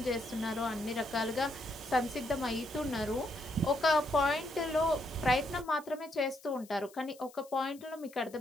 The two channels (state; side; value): noise; left; hiss, 23 dB below the sound